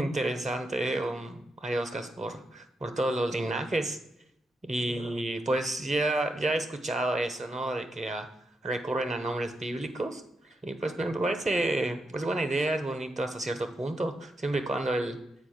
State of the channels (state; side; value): normal; both; correlation 0.84